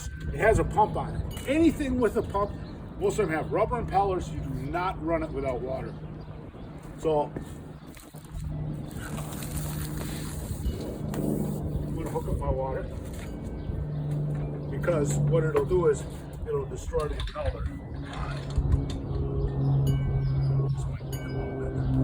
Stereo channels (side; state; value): both; identical; correlation 1.00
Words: it has a pump on it. Anything with a pump, most of them have rubber impellers. You do not run it without water. So I'm going to hook up my water because what it'll do is it'll destroy the impeller.